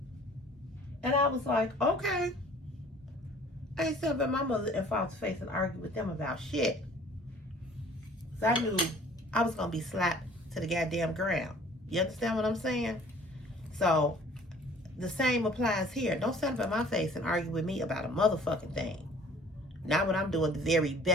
And I was like, okay. I ain't sitting up in my mother and father's face and argue with them about shit. Because I knew I was going to be slapped to the goddamn ground. You understand what I'm saying? So, the same applies here. Don't stand up in my face and argue with me about a motherfucking thing. Not when I'm doing the very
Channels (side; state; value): both; normal; correlation 0.52